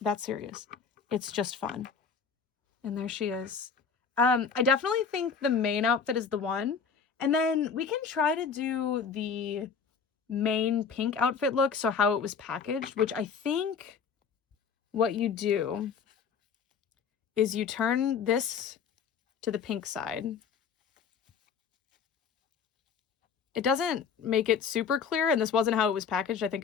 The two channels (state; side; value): quieter; right; 6.1 dB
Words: that serious. It's just fun. And there she is. I definitely think the main outfit is the one. And then we can try to do the main pink outfit look, so how it was packaged, which I think what you do is you turn this to the pink side. It doesn't make it super clear, and this wasn't how it was packaged. I think